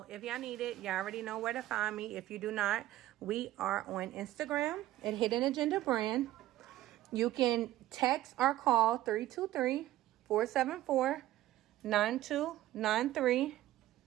if y'all need it, y'all already know where to find me. If you do not, we are on Instagram at Hidden Agenda Brand. You can text or call 323-474-9293.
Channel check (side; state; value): left; quieter; 14.9 dB